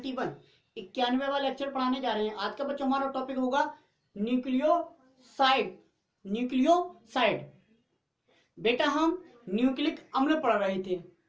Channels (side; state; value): both; identical; correlation 1.00